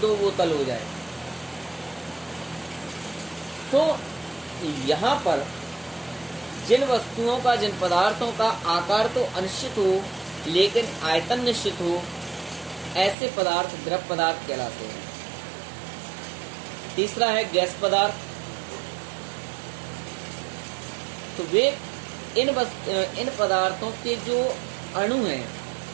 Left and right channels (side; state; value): left; drops out; at 13.2 s